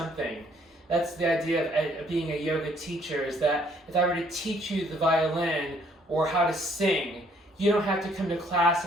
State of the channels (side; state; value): both; normal; correlation 0.65